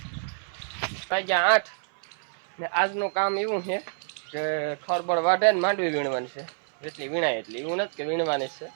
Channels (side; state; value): left; silent; 57 dB below the other